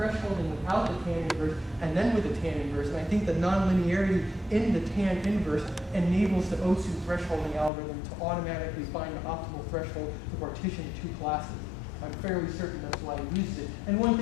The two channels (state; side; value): drops out; right; at 7.7 s